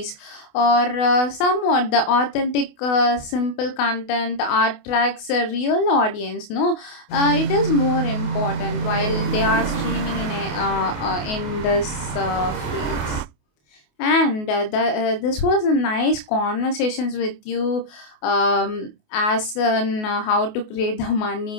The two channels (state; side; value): late; right; 28 ms